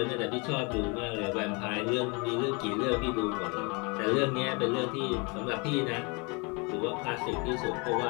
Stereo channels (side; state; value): right; quieter; 30.4 dB